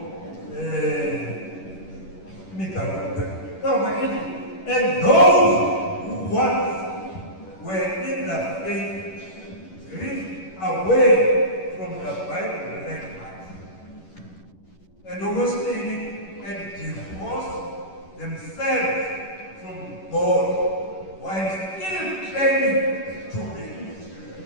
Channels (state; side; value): late; right; 11 ms